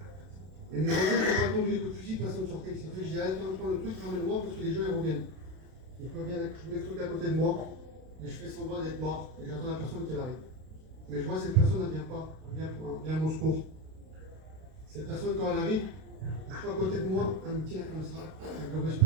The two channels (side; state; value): left; late; 32 ms